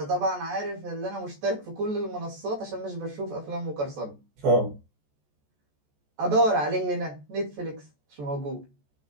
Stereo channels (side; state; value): left; late; 14 ms